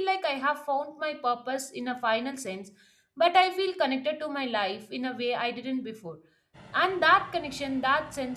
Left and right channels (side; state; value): both; identical; correlation 1.00